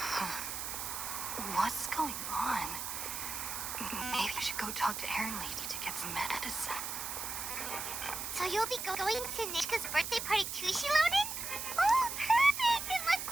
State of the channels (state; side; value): noise; right; hiss, 5 dB below the sound